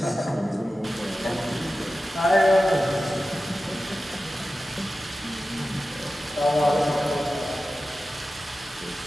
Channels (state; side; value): normal; both; correlation 0.94